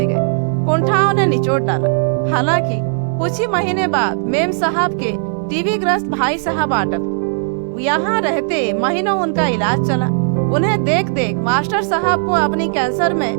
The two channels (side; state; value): left; silent; digital silence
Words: गए। कुंठाओं ने निचोड़ डाला। हालांकि कुछ ही महीने बाद मेम साहब के टीबी ग्रस्त भाई साहब आटक यहाँ रहते महीनों उनका इलाज चला। उन्हें देख देख मास्टर साहब को अपनी कैंसर में